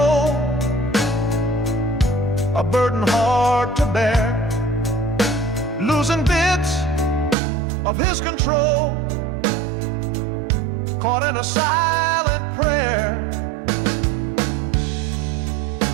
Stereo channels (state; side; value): drops out; left; at 7.4 s